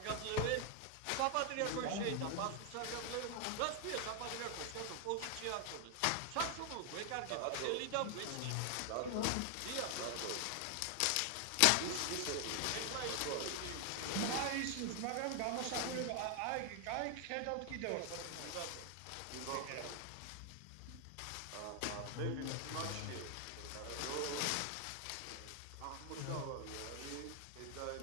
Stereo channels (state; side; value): different; both; correlation 0.00